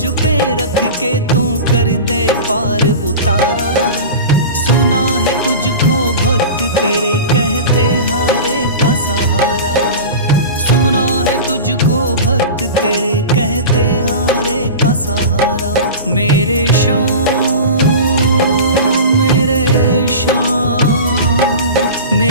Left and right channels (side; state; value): both; inverted; correlation -0.31